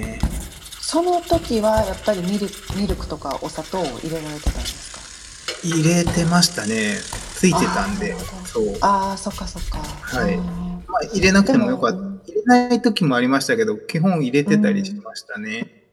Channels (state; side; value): identical; both; correlation 1.00